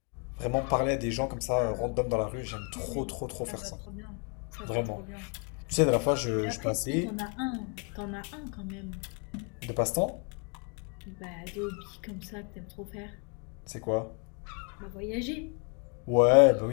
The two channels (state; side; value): quieter; right; 36.7 dB